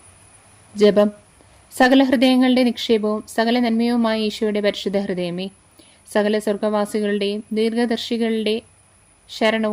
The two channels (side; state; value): both; identical; correlation 1.00